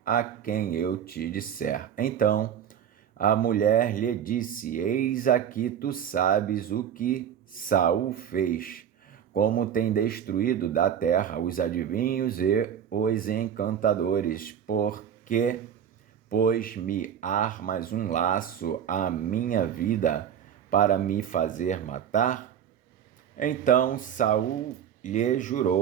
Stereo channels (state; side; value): quieter; left; 9.0 dB